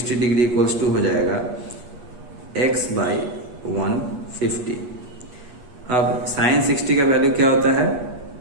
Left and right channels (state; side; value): late; left; 8.4 ms